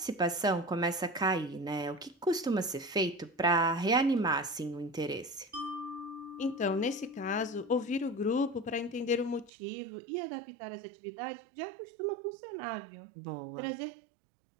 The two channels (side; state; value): left; drops out; at 9.5 s